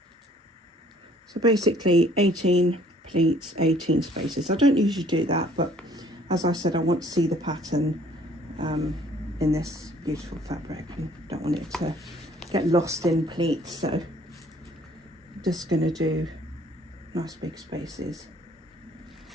So basically 18 pleats, 18 spaces. I don't usually do that, but as I said, I want to see the pattern in this beautiful fabric and don't want it to get lost in pleats. So I'm just going to do nice big spaces.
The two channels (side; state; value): both; normal; correlation 0.58